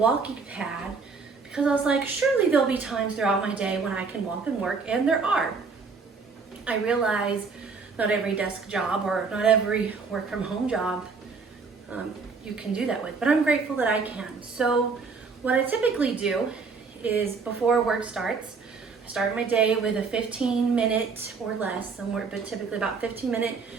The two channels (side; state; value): left; quieter; 4.8 dB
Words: pad because I was like, surely there'll be times throughout my day when I can walk and work, and there are. I realized not every desk job or not every work from home job you can do that with, but I'm grateful that I can. So what I typically do is before work starts, I start my day with a 15-minute or less, somewhere, but typically about 15-minute